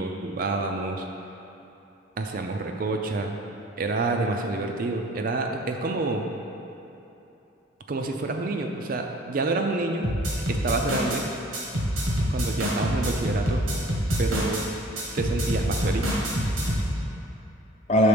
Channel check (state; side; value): normal; both; correlation 0.50